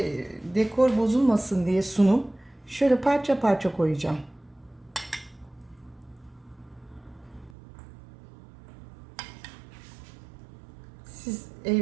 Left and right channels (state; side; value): drops out; left; at 7.6 s